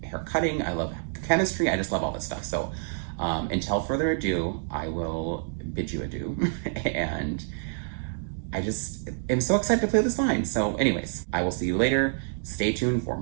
hair cutting. I love chemistry. I just love all this stuff. So until further ado, I will bid you adieu. And I just am so excited to play this line. So anyways, I will see you later. Stay tuned for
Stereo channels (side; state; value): left; silent; digital silence